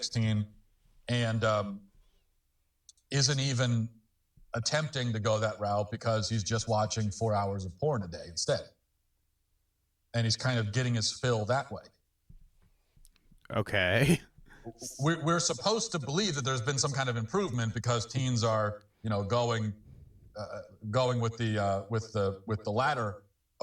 and isn't even attempting to go that route because he's just watching 4 hours of porn a day instead. And he's kind of getting his fill that way. Okay. We're supposed to believe that there's been some kind of improvement because teens are, going with the latter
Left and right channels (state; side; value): identical; both; correlation 1.00